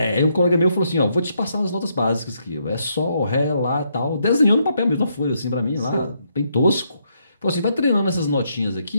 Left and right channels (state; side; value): inverted; both; correlation -0.76